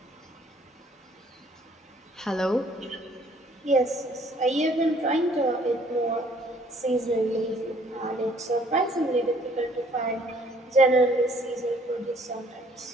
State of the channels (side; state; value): both; normal; correlation 0.61